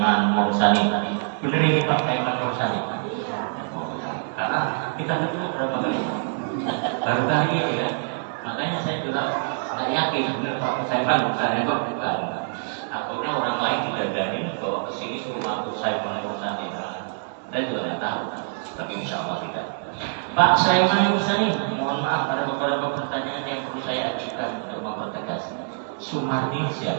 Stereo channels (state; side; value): silent; left; digital silence